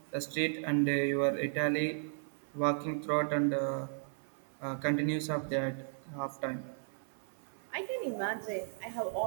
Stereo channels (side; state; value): left; silent; 54 dB below the other